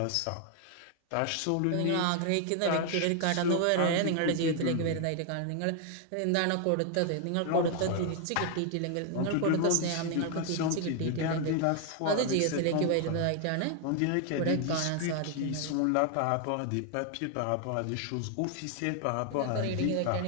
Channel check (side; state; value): both; different; correlation 0.00